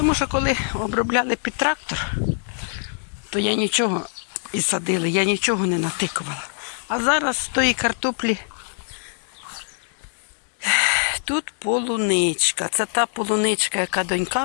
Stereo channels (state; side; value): silent; right; digital silence